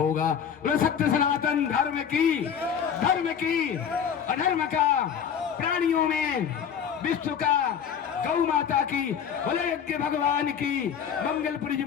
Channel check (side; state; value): right; quieter; 7.8 dB